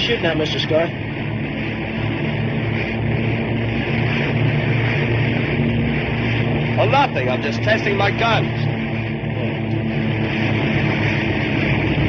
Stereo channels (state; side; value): identical; both; correlation 1.00